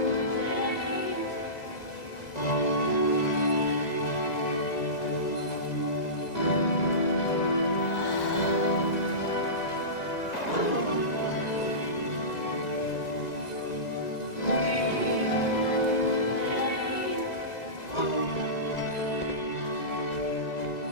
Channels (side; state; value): right; late; 2.0 ms